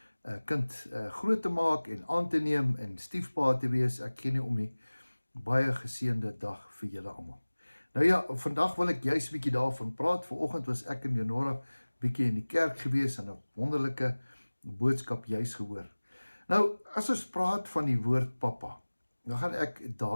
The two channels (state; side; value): inverted; both; correlation -1.00